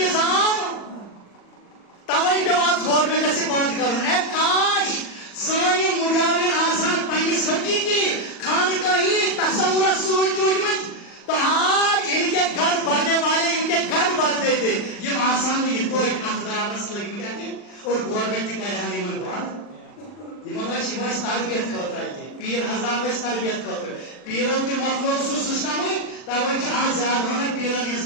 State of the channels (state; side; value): late; right; 40 ms